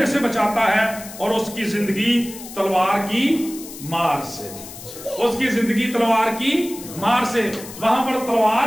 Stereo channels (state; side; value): noise; left; hiss, 14 dB below the sound